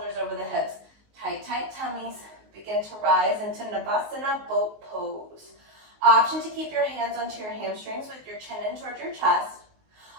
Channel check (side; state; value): left; late; 19 ms